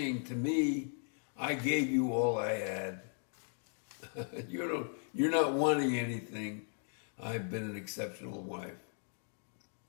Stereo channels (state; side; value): silent; right; 53 dB below the other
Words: to me, I gave you all I had. You're not wanting anything. I've been an exceptional wife.